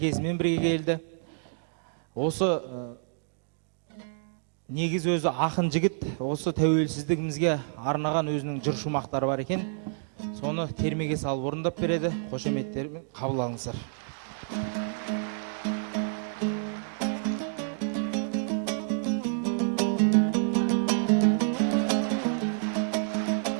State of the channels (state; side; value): silent; left; digital silence